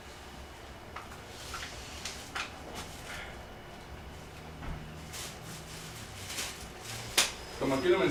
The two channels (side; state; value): both; identical; correlation 1.00